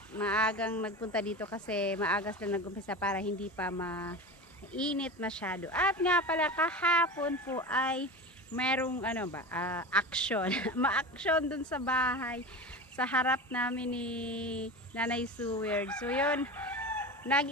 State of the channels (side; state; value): both; normal; correlation 0.28